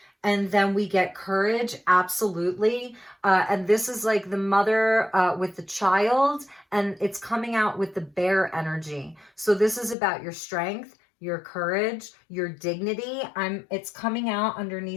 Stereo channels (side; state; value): right; drops out; at 10.0 s